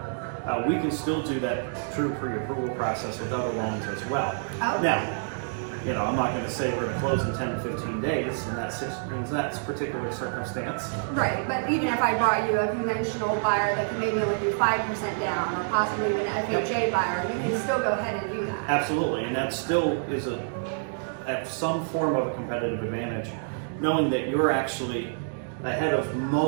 we can still do that true pre-approval process with other loans as well. Oh. Now, I'm not going to say we're going to close in 10 to 15 days in that particular circumstance. Right, but even if I brought you a conventional buyer that could maybe only do 5% down, or possibly even an FHA buyer, you can still go ahead and do that. Absolutely, and that still is some form of a competitive advantage, knowing that you're actually ahead of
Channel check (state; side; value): silent; left; digital silence